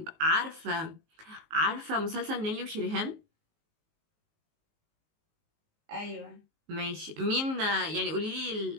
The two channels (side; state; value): left; late; 19 ms